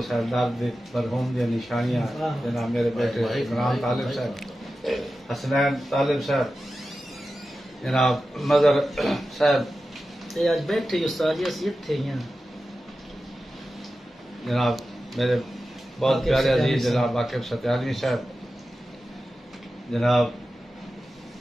دارد مرحوم دی نشانیاں، جناب میرے بیٹے عمران طالب صاحب، حسنین طالب صاحب، جناب مظہر صاحب، آج بیٹھے استاد تھے جناب میرے بہت پیارے عزیز جناب واقف ستیانی صاحب، جناب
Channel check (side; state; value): both; normal; correlation 0.93